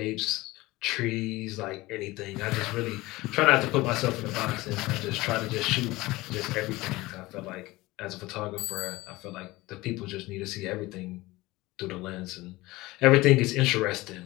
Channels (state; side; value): quieter; right; 20.0 dB